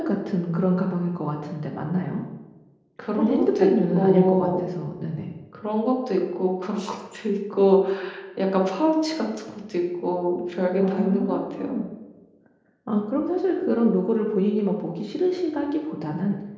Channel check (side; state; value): both; identical; correlation 1.00